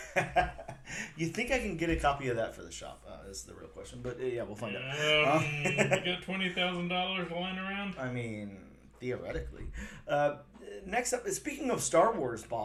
You think I can get a copy of that for the shop? Is the real question. But yeah, we'll find out. You got $20,000 lying around? I mean, theoretically. Next up, speaking of Star Wars,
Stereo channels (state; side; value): identical; both; correlation 1.00